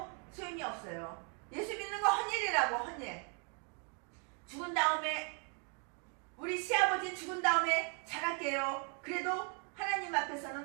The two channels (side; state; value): left; quieter; 39.0 dB